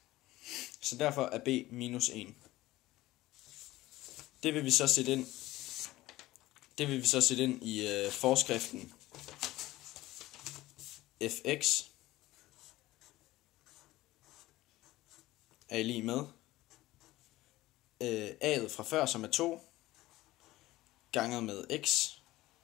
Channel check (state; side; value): quieter; right; 17.3 dB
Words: Så derfor er b minus 1. Det vil vi så sætte ind i forskriften fx er lige med a'et fra før, som er 2, ganget med x